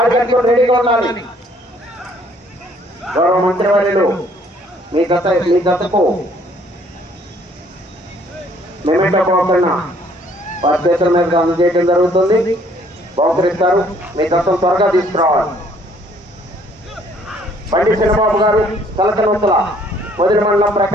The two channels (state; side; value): normal; both; correlation 0.62